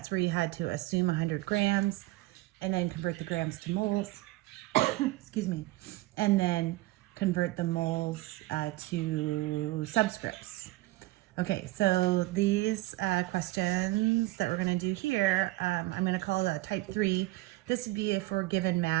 where you had to assume 100 grams and then convert the grams to moles, excuse me, and then convert the moles to subscripts. Okay, so these questions that we're going to do here, I'm going to call it type 3. This would be if we're given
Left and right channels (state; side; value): quieter; left; 18.6 dB